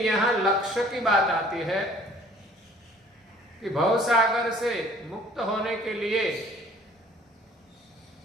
यहाँ लक्ष्य की बात आती है कि भवसागर से मुक्त होने के लिए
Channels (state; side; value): normal; both; correlation 0.54